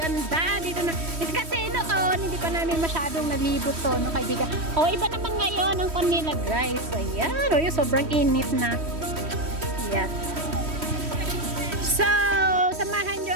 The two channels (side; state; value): left; late; 3.1 ms